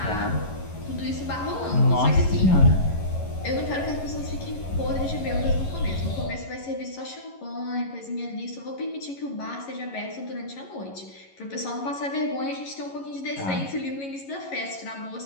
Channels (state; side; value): late; right; 11 ms